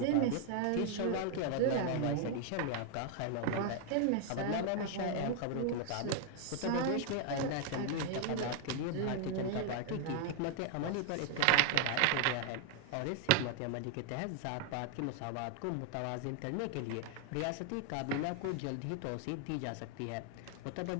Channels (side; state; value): both; different; correlation 0.00